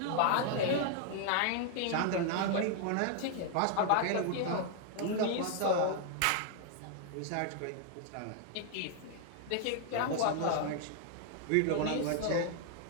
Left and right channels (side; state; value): both; different; correlation 0.00